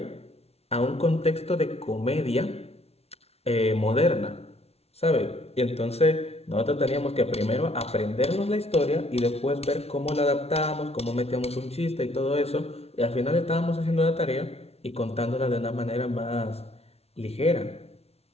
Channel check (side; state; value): right; late; 0.30 ms